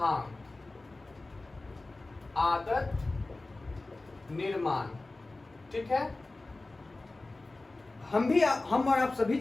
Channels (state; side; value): quieter; right; 3.1 dB